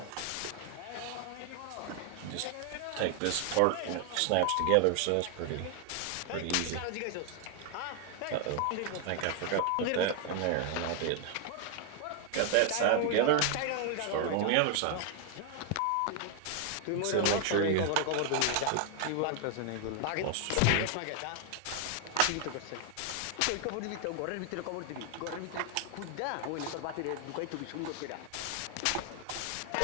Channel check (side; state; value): both; different; correlation 0.00